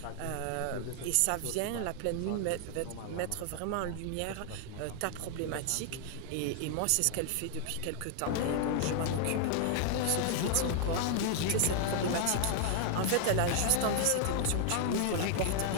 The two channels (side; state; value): both; different; correlation 0.00